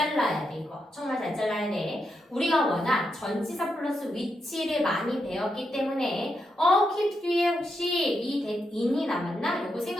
돼 이거. 정말 잘 잘라야 돼. 우리가 워낙 전치사 플러스 위치를 많이 배웠기 때문에 keep 뒤에 혹시 이 that in이 남았나? 요거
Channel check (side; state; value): both; normal; correlation 0.84